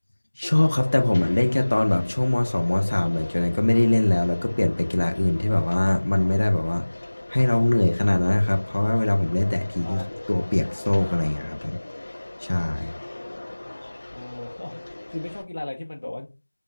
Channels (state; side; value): inverted; both; correlation -1.00